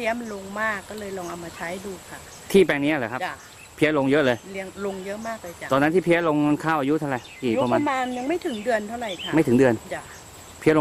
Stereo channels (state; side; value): identical; both; correlation 1.00